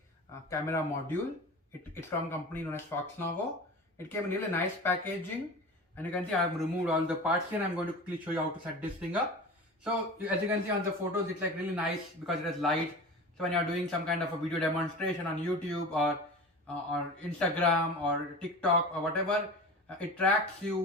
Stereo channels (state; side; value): normal; both; correlation 0.33